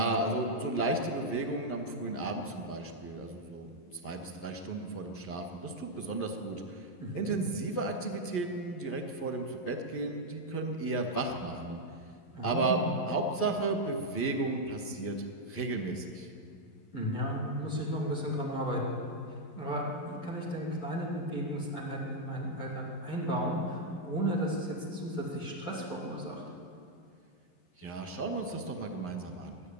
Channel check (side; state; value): right; late; 11 ms